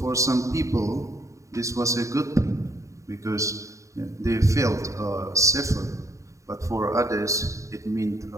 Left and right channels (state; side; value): late; left; 0.15 ms